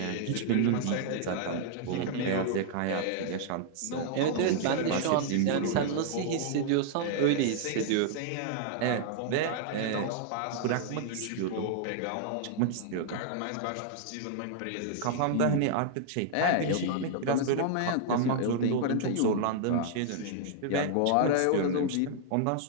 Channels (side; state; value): both; different; correlation -0.01